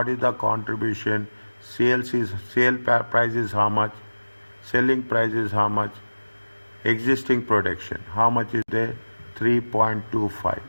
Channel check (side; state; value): both; inverted; correlation -1.00